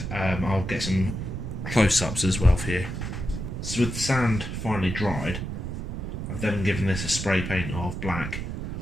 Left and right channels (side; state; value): right; noise; rumble, 5 dB below the sound